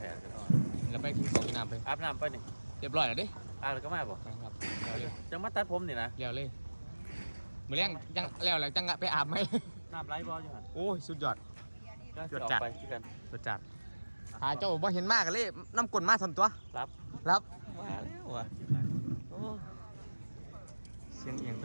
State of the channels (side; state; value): both; inverted; correlation -1.00